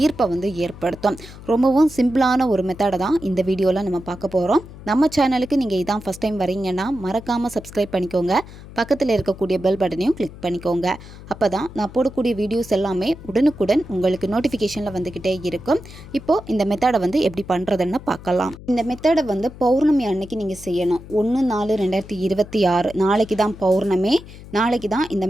ஈர்ப்பை ஏற்படுத்தும். ரொம்பவும் சிம்பிளான ஒரு மெத்தடை தான் இந்த வீடியோவில் நம்ம பார்க்க போகிறோம். நம்ம சேனலுக்கு நீங்கள் இதான் ஃபஸ்ட் டைம் வரீங்கன்னா மறக்காமல் சப்ஸ்கிரைப் பண்ணிக்கோங்க. பக்கத்தில் இருக்கக்கூடிய பெல் பட்டனையும் கிளிக் பண்ணிக்கோங்க. அப்போ தான் நான் போடக்கூடிய வீடியோஸ் எல்லாமே உடனுக்குடன் உங்களுக்கு நோட்டிஃபிகேஷனில் வந்துக்கிட்டே இருக்கும். இப்போது இந்த மெத்தடை எப்படி பண்ணுறதுன்னு பார்க்கலாம். இந்த மெத்தடை பௌர்ணமி அன்னைக்கு நீங்கள் செய்யணும். 1/4/2026 நாளைக்கு தான் பௌர்ணமி. நாளைக்கு தான் இந்த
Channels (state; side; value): noise; left; hum, 16 dB below the sound